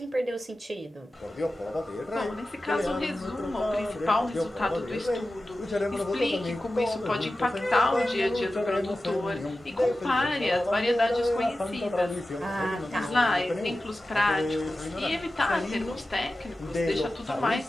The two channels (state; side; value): normal; both; correlation 0.94